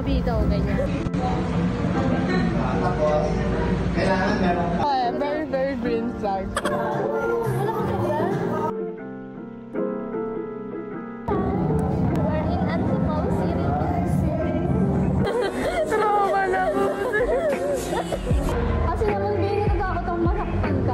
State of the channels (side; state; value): both; identical; correlation 1.00